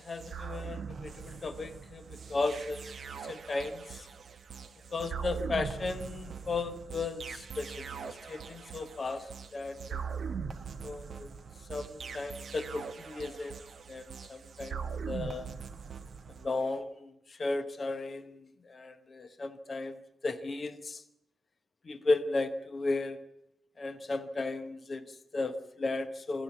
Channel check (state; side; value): normal; both; correlation 0.88